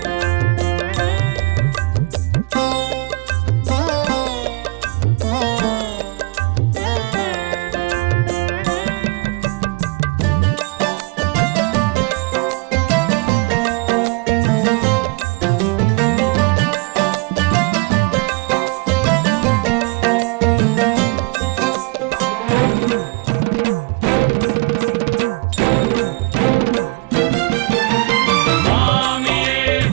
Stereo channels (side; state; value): left; quieter; 27.8 dB